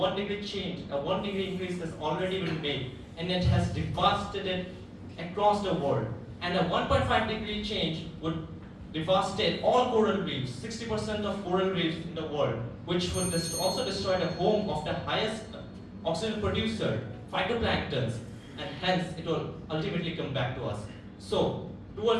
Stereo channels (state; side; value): identical; both; correlation 1.00